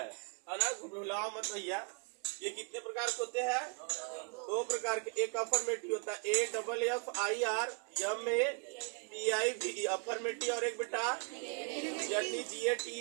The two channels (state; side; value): quieter; left; 38.0 dB